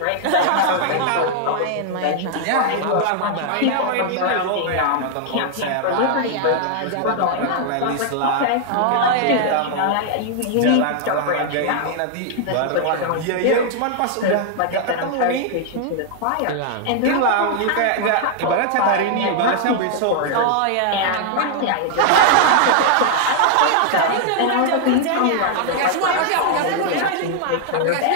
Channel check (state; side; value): different; both; correlation 0.00